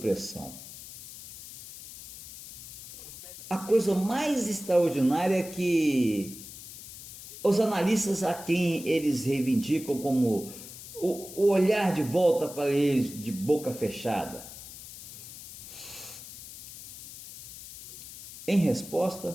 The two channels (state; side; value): noise; left; hiss, 14 dB below the sound